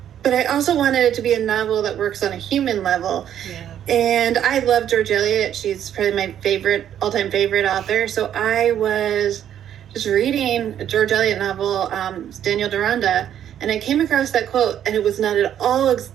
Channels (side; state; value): left; quieter; 10.1 dB